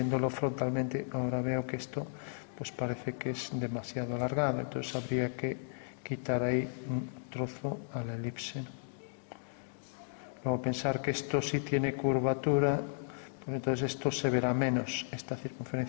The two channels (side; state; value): right; silent; digital silence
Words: frontalmente ahora veo que esto pues parece que es demasiado alargado, entonces habría que quitar ahí un trozo a la elipse, ¿no? Luego pensar que esto sí tiene curvatura, pues entonces esto se verá menos, esta